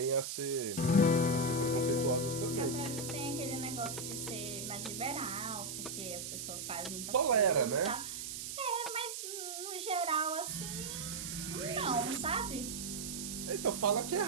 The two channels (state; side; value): noise; right; hiss, 6 dB below the sound